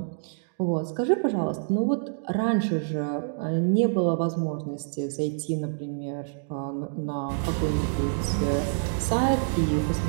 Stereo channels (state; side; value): silent; left; digital silence